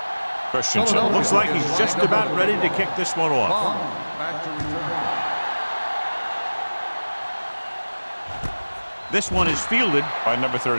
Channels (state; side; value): inverted; both; correlation -1.00